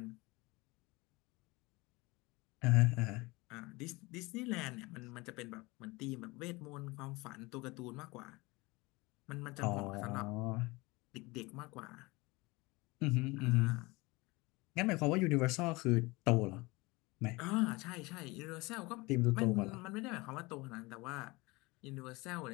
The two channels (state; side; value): quieter; right; 23.7 dB